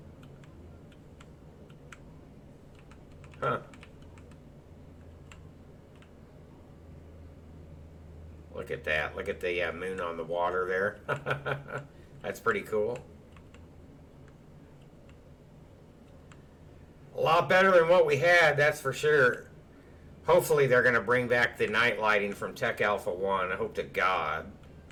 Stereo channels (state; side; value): identical; both; correlation 1.00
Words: Huh. Look at that. Look at the moon on the water there. That's pretty cool. A lot better than what we had, that's for sure. Hopefully they're going to bring back the night lighting from Tech Alpha 1. I hope to God.